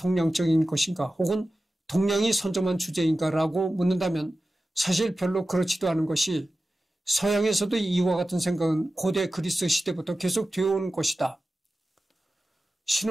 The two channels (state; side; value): normal; both; correlation 0.94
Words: 것인가 혹은 동양이 선점한 주제인가라고 묻는다면 사실 별로 그렇지도 않은 것이 서양에서도 이와 같은 생각은 고대 그리스 시대부터 계속 되어온 것이다.